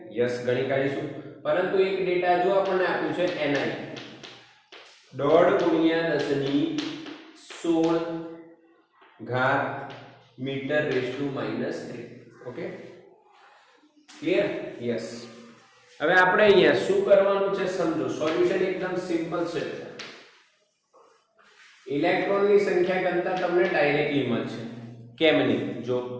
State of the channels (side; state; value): both; identical; correlation 1.00